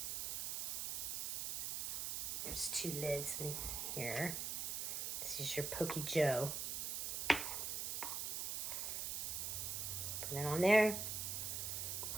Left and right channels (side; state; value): right; noise; hiss, 1 dB below the sound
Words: There's 2 lids in here. This is your Pokey Joe. Put it on there.